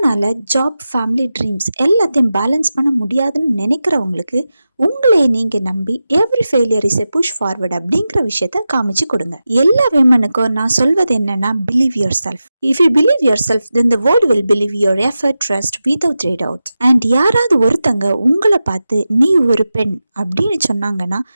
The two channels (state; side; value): inverted; both; correlation -0.92